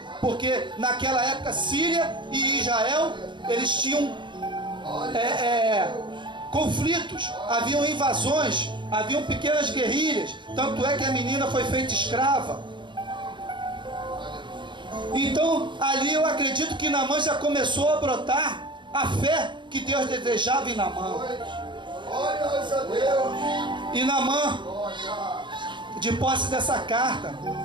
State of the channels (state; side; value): late; left; 0.23 ms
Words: porque naquela época Síria e Israel, eles tinham conflitos, haviam invasões, haviam pequenas guerrilhas, tanto é que a menina foi feita escrava. Então ali eu acredito que Naamã já começou a brotar a fé que Deus desejava em Naamã. E Naamã, de posse dessa carta,